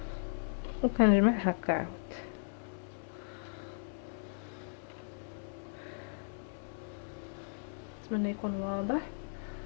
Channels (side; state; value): right; silent; digital silence